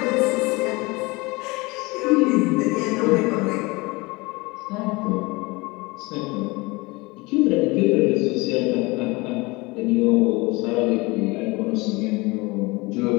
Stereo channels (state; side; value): quieter; right; 24.3 dB